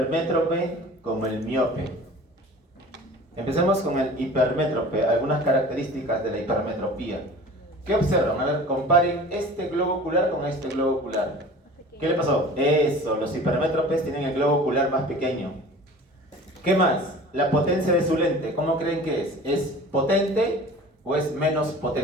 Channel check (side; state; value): both; normal; correlation 0.42